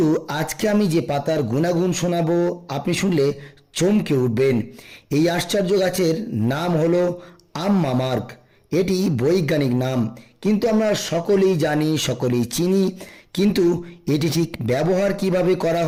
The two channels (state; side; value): identical; both; correlation 1.00